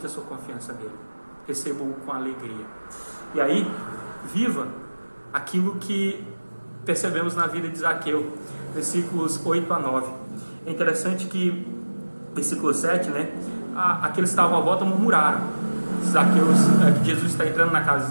a sua confiança nele. Receba-o com alegria. E aí, viva aquilo que percebemos na vida de Zaqueu, versículos 8 a 9. É interessante que, versículo 7, né? Aqueles que estavam à volta murmuraram. Que Jesus está entrando na casa de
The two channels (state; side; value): inverted; both; correlation -1.00